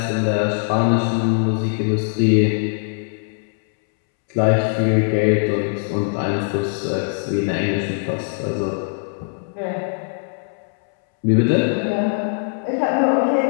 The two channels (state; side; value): silent; right; 65 dB below the other